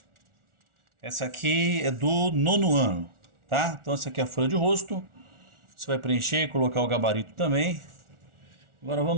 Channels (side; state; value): left; late; 1.4 ms